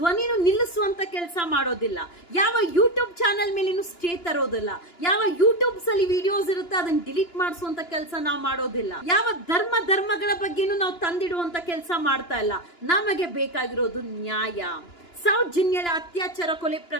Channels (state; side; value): late; right; 2.9 ms